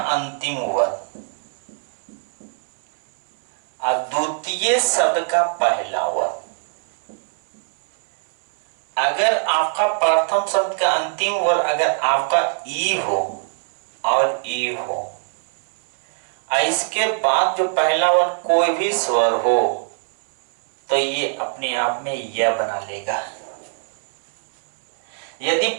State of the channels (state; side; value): silent; left; 64 dB below the other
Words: अंतिम वर्ण द्वितीय शब्द का पहला वर्ग। अगर आपका प्रथम शब्द का अंतिम वर्ग अगर आपका ई हो और ई हो, इसके बाद जो पहला वर्ग कोई भी स्वर हो, तो ये अपने आप में यह बना लेगा। यदि